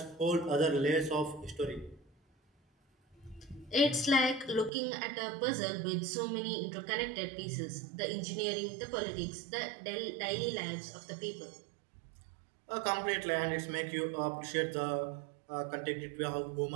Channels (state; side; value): drops out; left; at 4.7 s